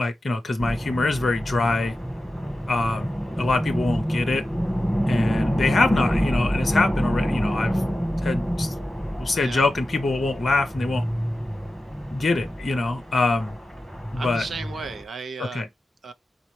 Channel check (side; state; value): both; normal; correlation 0.93